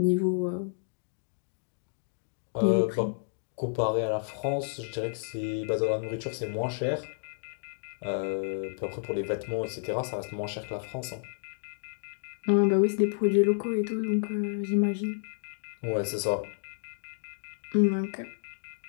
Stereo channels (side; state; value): right; silent; digital silence